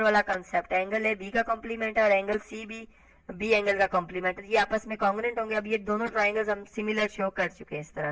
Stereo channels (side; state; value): both; identical; correlation 1.00